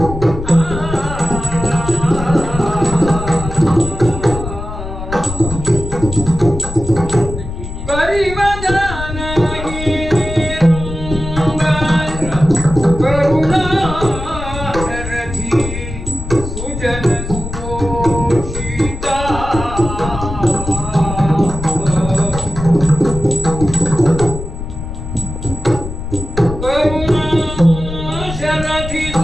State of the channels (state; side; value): noise; left; rumble, 8 dB below the sound